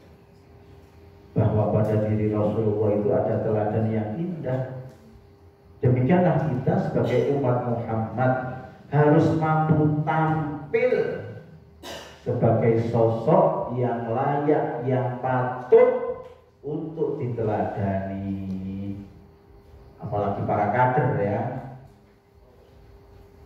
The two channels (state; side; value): identical; both; correlation 1.00